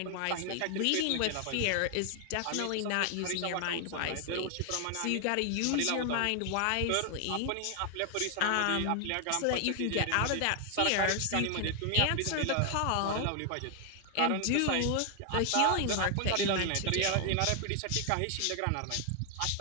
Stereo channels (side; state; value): both; different; correlation 0.00